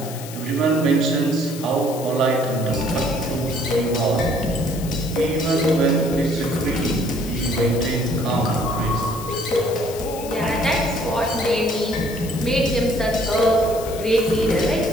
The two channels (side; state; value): left; noise; hiss, 14 dB below the sound